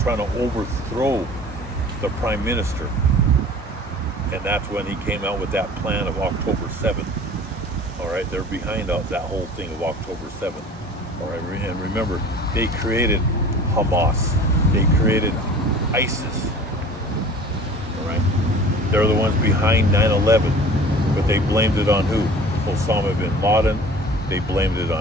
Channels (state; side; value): normal; both; correlation 0.44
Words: trying to overthrow the prime minister, and that's when he came out with that plan of October 7th. All right, they're behind that whole thing of October 7th. All right, and remember, they created Hamas. They created ISIS. All right, they're the ones behind 9/11, but they blamed it on who? Osama bin Laden. They blamed it